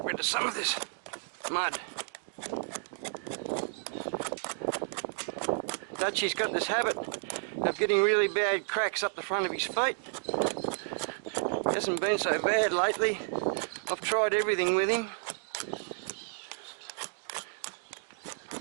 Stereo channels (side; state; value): left; silent; digital silence